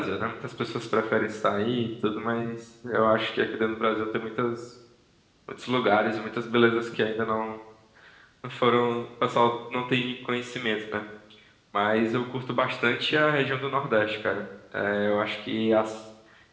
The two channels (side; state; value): both; identical; correlation 1.00